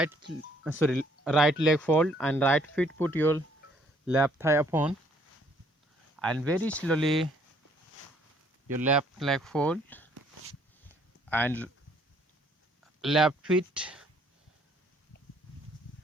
leg fold and right foot put your left thigh upon, and very slowly your left leg fold and left foot,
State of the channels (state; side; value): normal; both; correlation 0.63